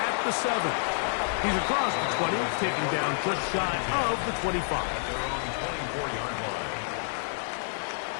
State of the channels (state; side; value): silent; right; 56 dB below the other